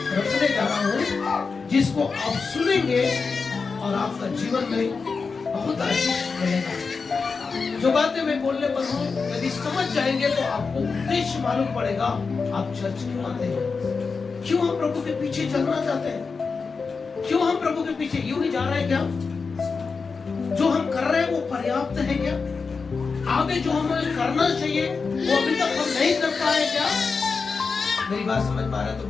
रखने जा रहा हूँ जिसको आप सुनेंगे और आपका जीवन में बहुत आशीष मिलेगा। जो बातें मैं बोलने पर हूँ यदि समझ जाएंगे तो आपको उद्देश्य मालूम पड़ेगा। आप चर्च क्यों आते हैं, क्यों हम प्रभु के पीछे चलना चाहते हैं, क्यों हम प्रभु के पीछे यूं ही जा रहे हैं। क्या जो हम कर रहे हैं वो पर्याप्त है क्या? आगे जो हमें करना चाहिए वो अभी तक हम नहीं कर पाए क्या? मेरी बात समझ पा रहे तो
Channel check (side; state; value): right; quieter; 4.8 dB